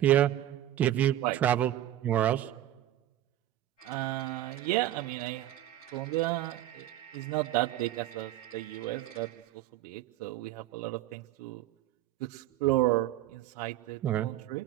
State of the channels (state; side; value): quieter; left; 13.3 dB